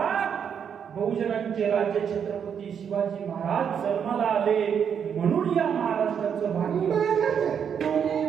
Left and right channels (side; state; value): left; quieter; 7.7 dB